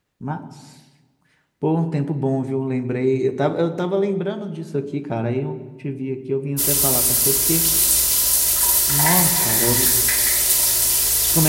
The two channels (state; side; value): identical; both; correlation 1.00